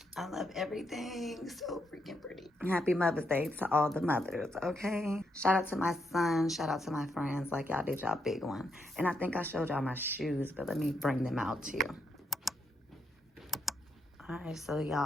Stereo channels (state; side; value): normal; both; correlation 0.79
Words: I love everything. So freaking pretty. Happy Mother's Day to all the mothers, okay? Shout out to my son. Shout out to my friends. Like, y'all did y'all big one. And I think I showed y'all my shoes, but let me bring them out to you. All right, so